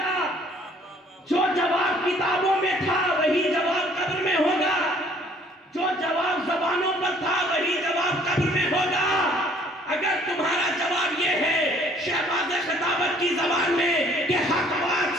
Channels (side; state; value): both; normal; correlation 0.58